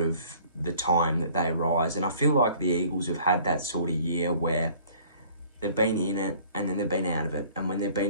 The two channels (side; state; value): both; inverted; correlation -0.54